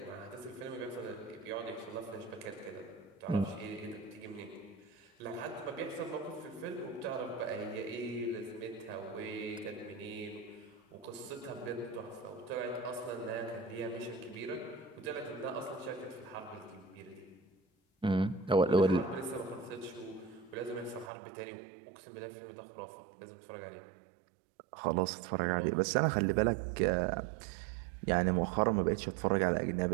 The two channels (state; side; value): drops out; left; at 21.1 s